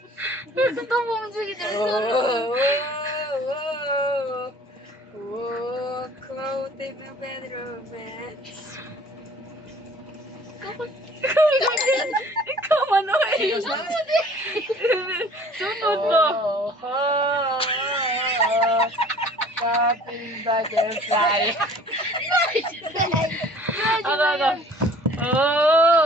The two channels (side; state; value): both; normal; correlation 0.50